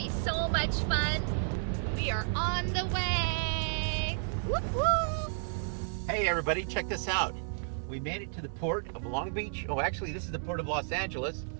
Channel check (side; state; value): left; silent; digital silence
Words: so much fun. We are on the way! Whoop whoop! Hey everybody, check this out. We made it to the port of Long Beach. Oh, actually this is the port of Los Angeles.